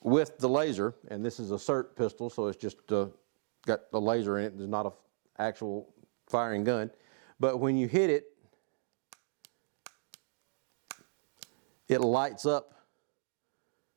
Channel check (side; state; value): left; silent; digital silence